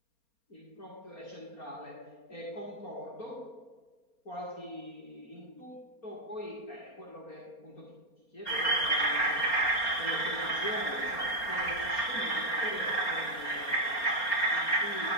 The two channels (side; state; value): right; late; 4.3 ms